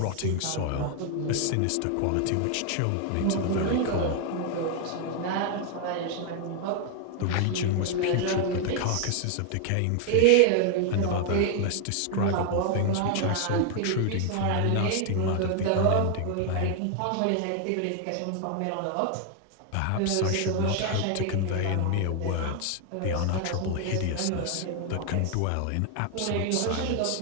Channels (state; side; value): different; both; correlation 0.00